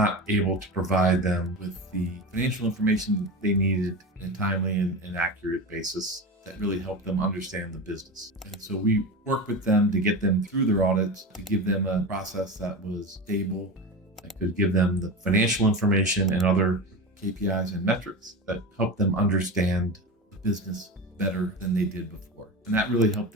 able to provide them with the financial information that they needed in a timely and accurate basis that really helped them understand the business. And so we worked with them to get them through their audits, to give them a process that was stable, that could give them the financial information and other KPIs and metrics that helped them understand the business better than they did before. And that really helped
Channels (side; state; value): both; normal; correlation 0.25